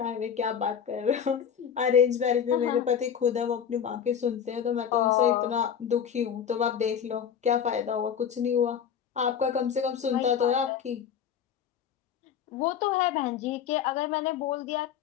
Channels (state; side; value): quieter; right; 8.1 dB